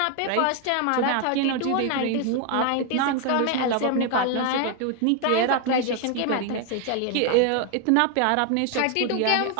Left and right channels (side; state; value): both; different; correlation 0.01